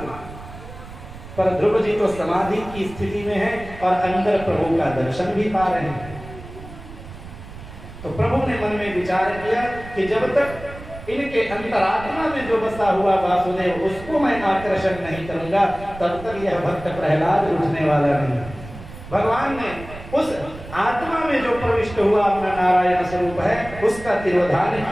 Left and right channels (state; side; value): noise; right; rumble, 15 dB below the sound